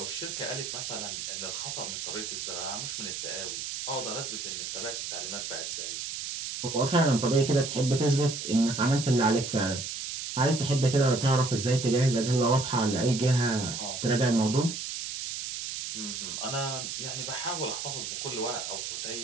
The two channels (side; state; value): right; noise; hiss, 5 dB below the sound